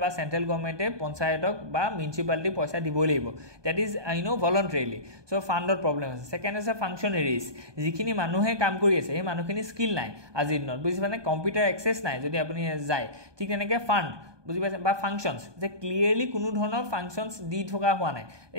বা সেন্ট্ৰেল গভৰ্নমেন্টে পঞ্চায়তক বা মিউনিসিপালিটি পইচা দিবই লাগিব দ্যাট ইজ ভলান্টাৰিলি সো ফান্ডৰ প্ৰবলেম আছে সেকেন্ড আছে ফাংচনাৰিজ যিখিনি মানুহে কাম কৰি আছে এই মানুহখিনি স্কিল নাই আজিৰ দিনত বুজি মানে কম্পিউটাৰ এক্সেস নাই যদি আপুনি যায় ঠিক তেনেকৈ ফান্ড বুজি পাইছে বা ফাংশনস যে ক্লিয়াৰলি কোনো ধৰণৰ ফাংশনস দি থকা হোৱা নাই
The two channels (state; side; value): late; left; 1.2 ms